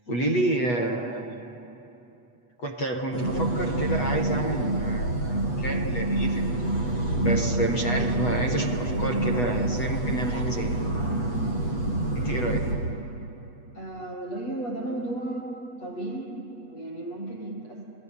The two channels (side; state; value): right; late; 8.2 ms